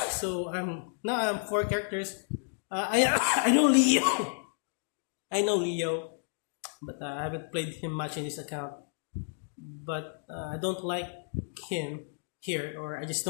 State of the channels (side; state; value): right; silent; digital silence